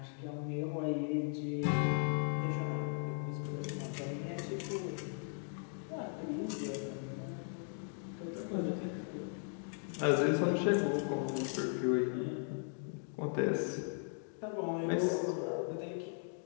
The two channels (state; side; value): silent; right; 53 dB below the other